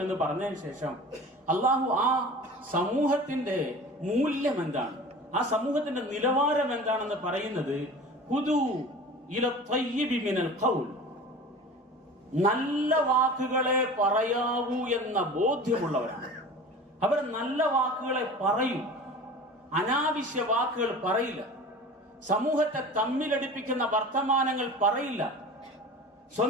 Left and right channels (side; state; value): both; normal; correlation 0.38